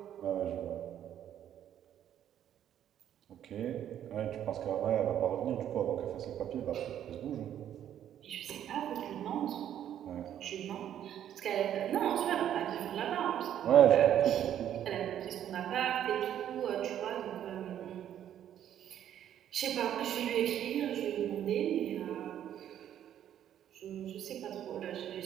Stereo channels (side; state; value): left; quieter; 10.5 dB